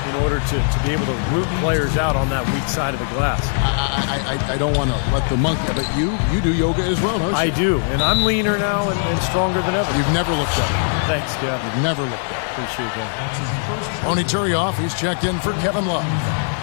in order to be able to root players out on that weak side of the glass. I don't want to let the monkey, but you do yoga as well, don't you? I do, and I'm leaner now and stronger than ever. You've never looked at it. Thanks, Kev. You've never looked at it. Appreciate that. Tony Turioff, he's checked in for Kevin Love.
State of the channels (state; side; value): silent; right; 61 dB below the other